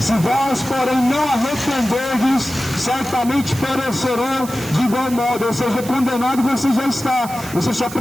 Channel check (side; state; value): right; noise; hiss, 14 dB below the sound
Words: se vós, porém, não arrependerdes, certamente perecerão de igual modo. Ou seja, condenado você já está. Você só